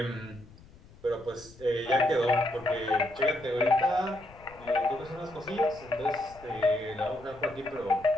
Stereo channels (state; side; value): noise; left; rumble, 22 dB below the sound